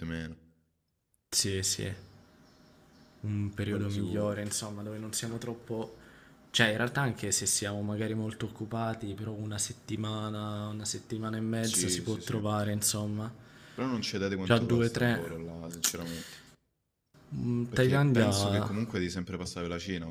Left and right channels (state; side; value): identical; both; correlation 1.00